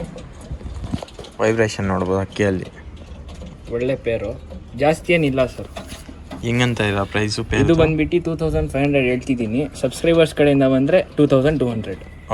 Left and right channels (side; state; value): both; identical; correlation 1.00